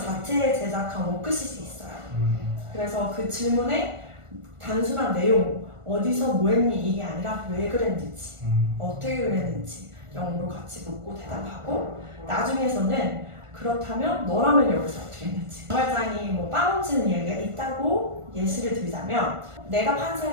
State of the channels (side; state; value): left; late; 1.4 ms